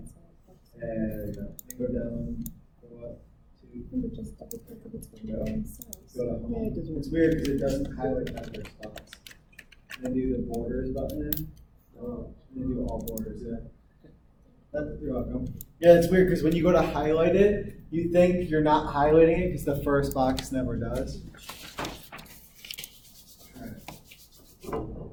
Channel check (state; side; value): identical; both; correlation 1.00